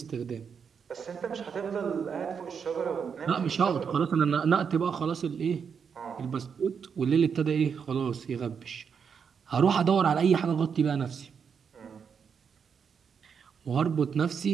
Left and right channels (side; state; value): left; quieter; 6.6 dB